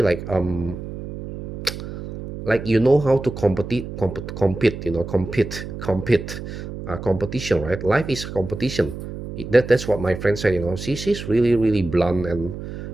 like, how to compete, competition, right? Life is competition. That's what my friend said. She's really really blunt, and,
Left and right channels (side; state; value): right; noise; hum, 9 dB below the sound